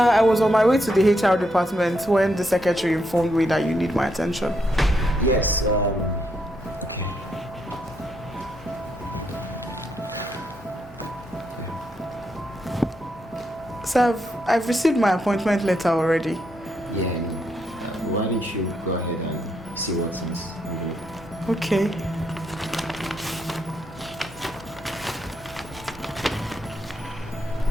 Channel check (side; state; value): both; normal; correlation 0.78